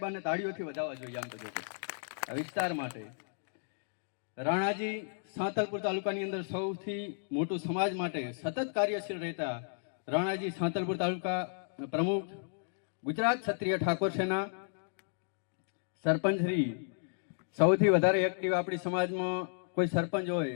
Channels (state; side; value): silent; right; digital silence